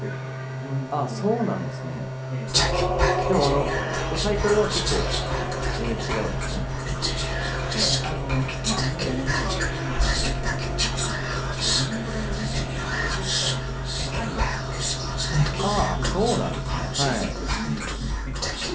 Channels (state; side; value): identical; both; correlation 1.00